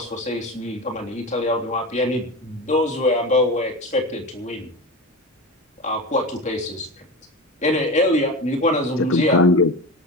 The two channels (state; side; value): normal; both; correlation 0.26